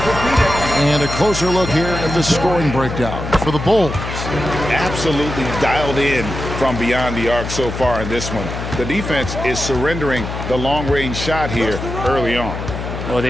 And a closer look here at the scoring breakdown for the Bulls. Absolutely dialed in from beyond the arc so far in this one. The defense is surrendering the long-range shot here early on. Well,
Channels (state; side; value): noise; left; hum, 6 dB below the sound